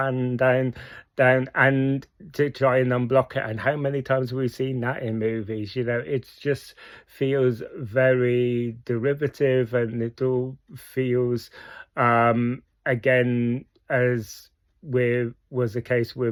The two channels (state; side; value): identical; both; correlation 1.00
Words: down and to try and unblock it. And how many times have we seen that in movies? You know, it just feels very derivative, and it all feels again, as with was the case